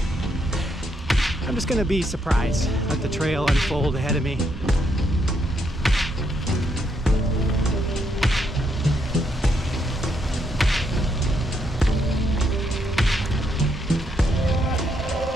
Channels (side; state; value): both; normal; correlation 0.76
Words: I'm just gonna be surprised. Let the trail unfold ahead of me.